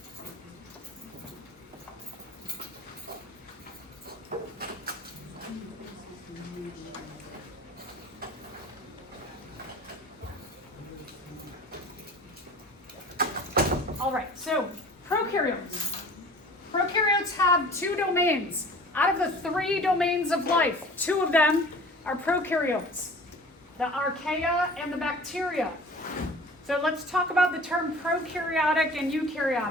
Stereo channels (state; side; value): normal; both; correlation 0.43